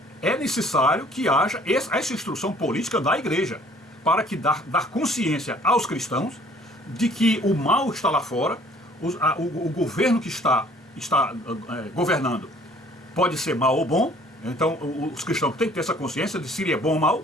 é necessário que haja essa instrução política da igreja, para que dar consciência aos cristãos de que o mal está lá fora, o governo que está governando pode ser mal ou bom. Então os cristãos têm que ter essa consciência de se ele é bom ou mal,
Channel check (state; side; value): normal; both; correlation 0.56